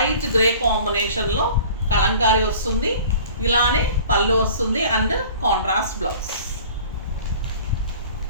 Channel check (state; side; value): inverted; both; correlation -0.45